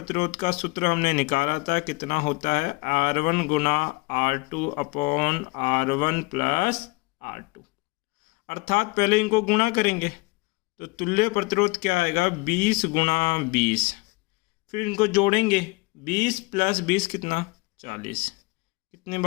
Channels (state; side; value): quieter; right; 26.1 dB